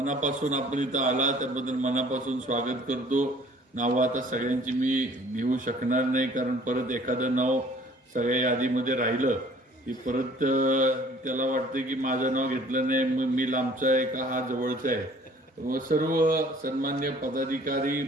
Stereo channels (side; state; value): both; normal; correlation 0.54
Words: आपण इथं आला त्याबद्दल मनापासून स्वागत करतो. नावं आता सगळ्यांची मी घेऊ शकणार नाही, कारण परत एखादं नाव सगळ्या यादीमध्ये राहिलं की परत त्याला वाटतं की माझं नाव घेतलं नाही, मग मी लांबचा आहे का हा जवळचा आहे. व सर्व सन्मान्य पदाधिकारी,